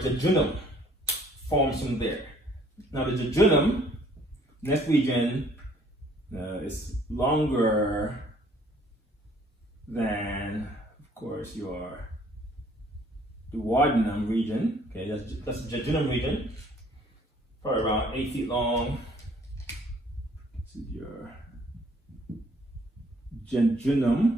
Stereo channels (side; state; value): both; normal; correlation 0.59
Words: jejunum forms from there. Now the jejunum, next region, is longer than, of course, your duodenum region. Okay, that's the jejunum region, probably around 8 feet long. This is your